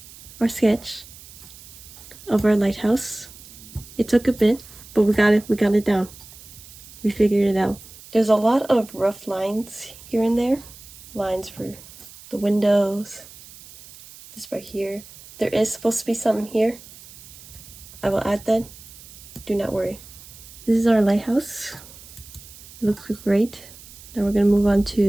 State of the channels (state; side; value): noise; right; hiss, 19 dB below the sound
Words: our sketch of our lighthouse. It took a bit, but we got it down. We figured it out. There's a lot of rough lines here and there. Lines for the windows. This right here. There is supposed to be something here. I will add that. Do not worry. This is our lighthouse. It looks great. Now we're going to move on